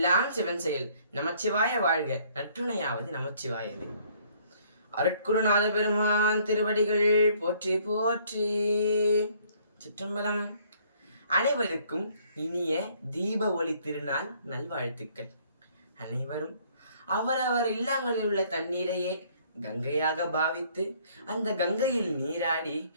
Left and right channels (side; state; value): both; inverted; correlation -0.61